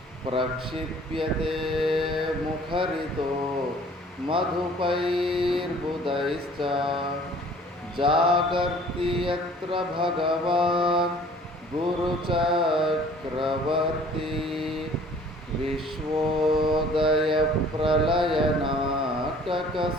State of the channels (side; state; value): both; normal; correlation 0.52